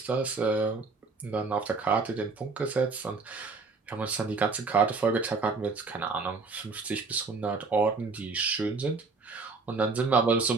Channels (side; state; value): left; quieter; 4.2 dB